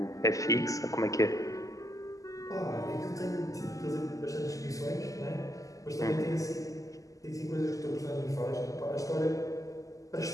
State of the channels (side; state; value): right; late; 0.16 ms